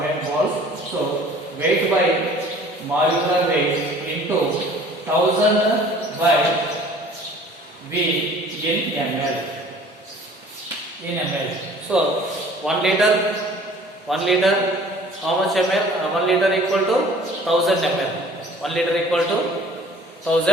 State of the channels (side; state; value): both; normal; correlation 0.50